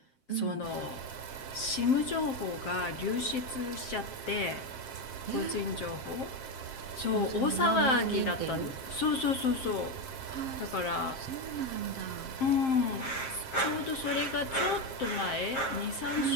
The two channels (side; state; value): right; late; 7.6 ms